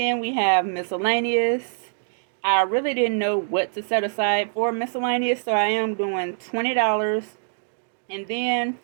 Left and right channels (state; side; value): silent; left; digital silence